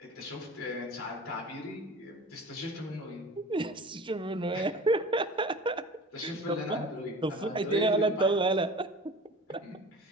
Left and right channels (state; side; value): normal; both; correlation 0.39